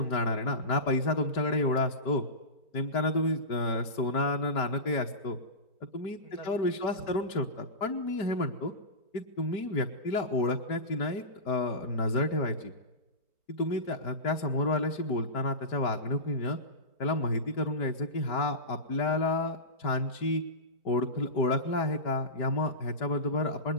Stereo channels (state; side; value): late; right; 4.4 ms